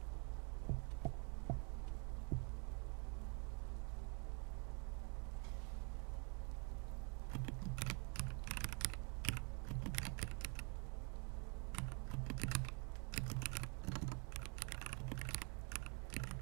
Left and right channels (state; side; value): quieter; left; 35.0 dB